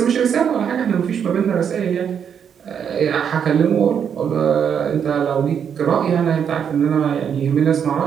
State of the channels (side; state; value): left; quieter; 7.8 dB